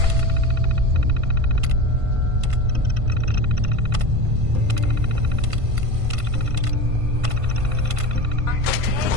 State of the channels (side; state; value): left; late; 1.5 ms